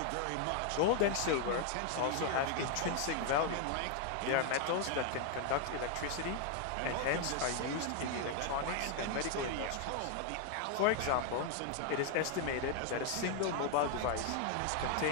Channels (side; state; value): both; different; correlation 0.00